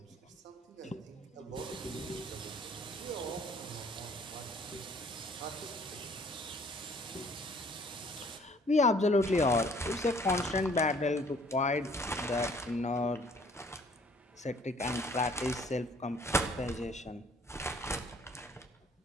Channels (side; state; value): both; normal; correlation 0.58